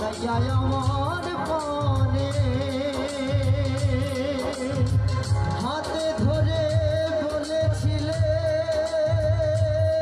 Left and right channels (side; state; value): both; identical; correlation 1.00